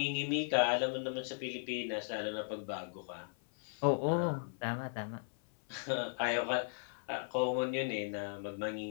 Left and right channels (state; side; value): silent; right; 53 dB below the other